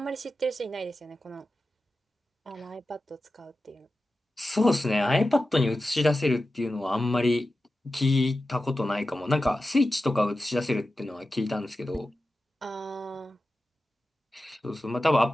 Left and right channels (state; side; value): normal; both; correlation 0.93